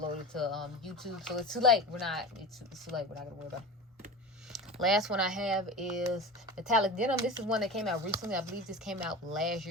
to YouTube, so it's too late. It's too late. We're not gonna worry about it. Last one I have is Metallic Denim. This is one that came out recently. I believe this came out last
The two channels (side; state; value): both; normal; correlation 0.30